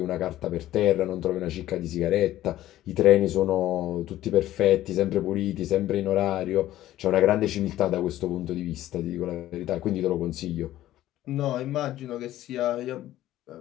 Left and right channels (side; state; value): right; quieter; 14.1 dB